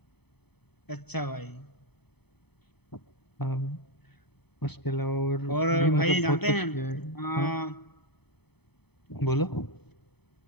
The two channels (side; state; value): right; late; 0.98 ms